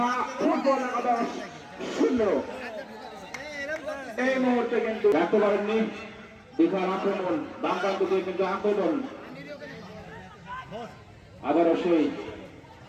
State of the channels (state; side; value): identical; both; correlation 1.00